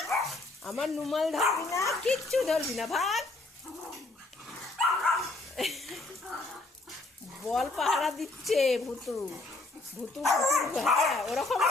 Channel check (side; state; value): right; quieter; 3.2 dB